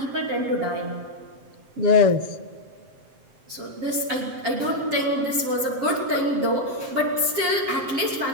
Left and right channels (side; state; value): left; late; 7.6 ms